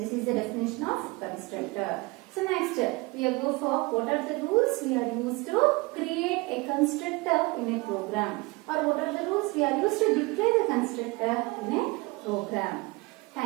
is the definition of constructor. So next, we will go for what are the rules we are used to create a constructor in a program, or what are the rules we are used to declare the constructor in a program.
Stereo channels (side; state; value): left; quieter; 24.9 dB